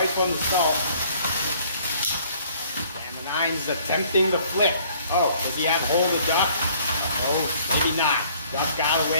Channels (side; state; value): both; inverted; correlation -0.58